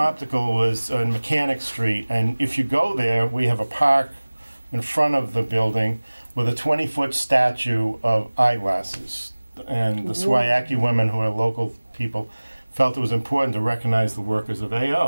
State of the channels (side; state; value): both; inverted; correlation -1.00